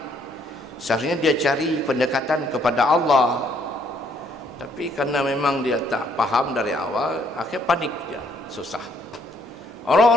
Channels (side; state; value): both; normal; correlation 0.67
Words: Seharusnya dia cari pendekatan kepada Allah, tapi karena memang dia tak paham dari awal, akhirnya panik dia, susah.